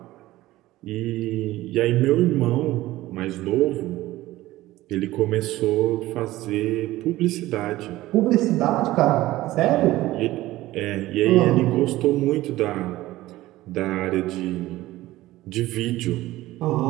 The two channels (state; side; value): quieter; left; 16.8 dB